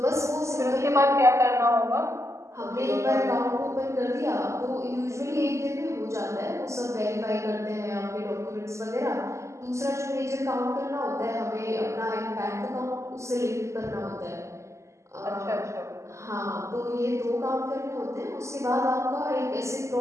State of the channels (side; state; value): left; late; 0.14 ms